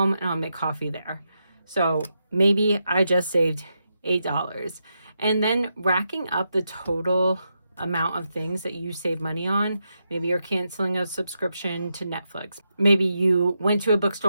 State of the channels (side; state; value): both; inverted; correlation -0.85